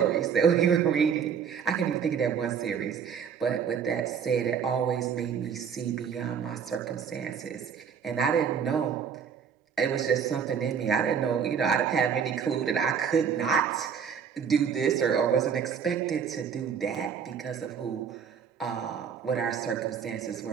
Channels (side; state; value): left; quieter; 7.2 dB